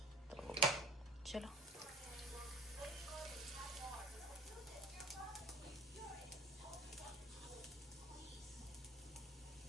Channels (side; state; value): both; normal; correlation 0.45